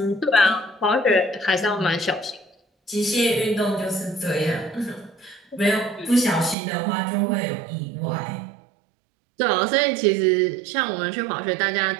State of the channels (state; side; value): drops out; left; at 6.6 s